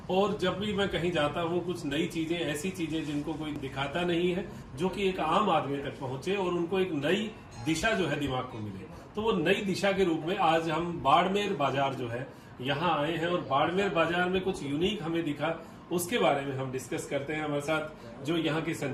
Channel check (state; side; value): identical; both; correlation 1.00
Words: और जब भी मैं कहीं जाता हूँ कुछ नई चीजें, ऐसी चीजें जिनको कोई दिखाता नहीं है, जो कि एक आम आदमी तक पहुंचे और उनको एक नई दिशा जो है दिमाग को मिले, तो वो नई दिशा के रूप में आज हम बाड़मेर बाजार जो है यहाँ आए हैं और बाड़मेर बाजार में कुछ यूनिक हमें दिखा, उसके बारे में हम डिस्कस करते हैं। हमारे साथ जो यहाँ के